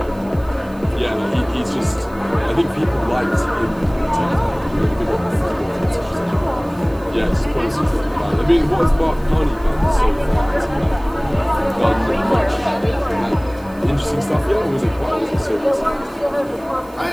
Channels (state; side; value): noise; right; hiss, 27 dB below the sound